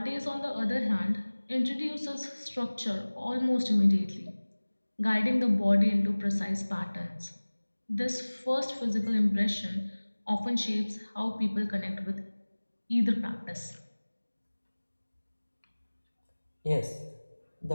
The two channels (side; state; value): both; inverted; correlation -1.00